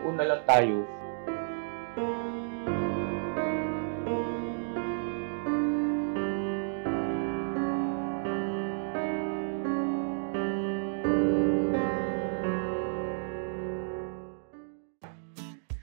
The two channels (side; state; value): left; silent; digital silence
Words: na lang tayo.